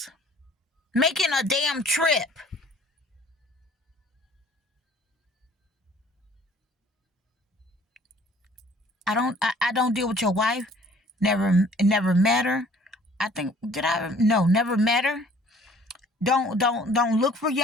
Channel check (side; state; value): both; normal; correlation 0.54